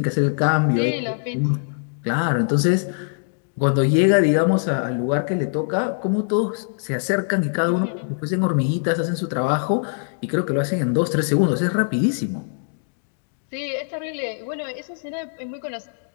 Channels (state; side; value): silent; right; digital silence